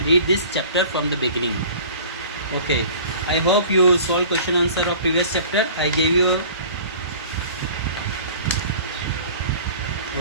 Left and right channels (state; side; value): inverted; both; correlation -0.45